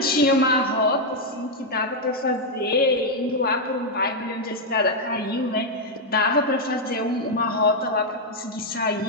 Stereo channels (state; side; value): normal; both; correlation -0.01